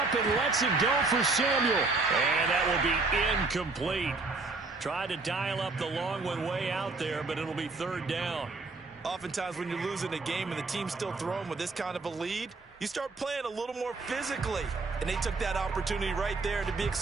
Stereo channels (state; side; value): quieter; left; 3.7 dB